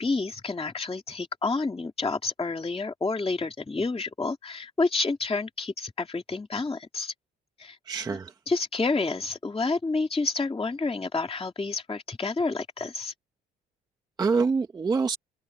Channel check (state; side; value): normal; both; correlation 0.71